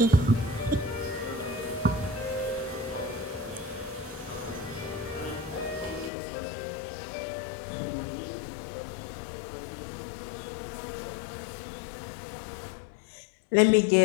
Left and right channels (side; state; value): right; drops out; at 6.1 s